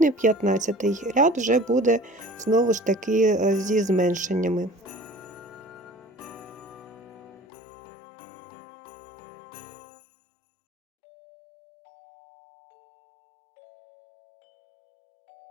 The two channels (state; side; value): drops out; right; at 7.3 s